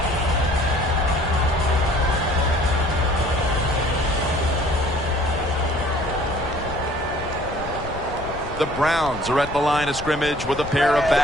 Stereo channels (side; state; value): left; noise; rumble, 12 dB below the sound